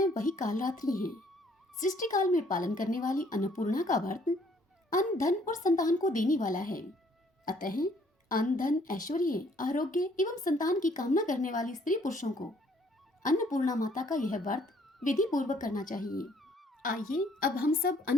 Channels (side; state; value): both; normal; correlation 0.63